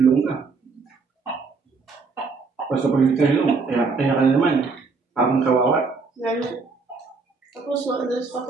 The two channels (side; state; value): left; quieter; 4.5 dB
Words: ka. Basta pag hindi ka hilong, kaya ka na naman. Parang kawawa. Tapos wala sa